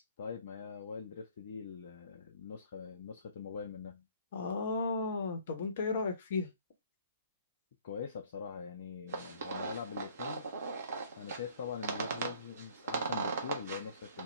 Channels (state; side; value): inverted; both; correlation -0.56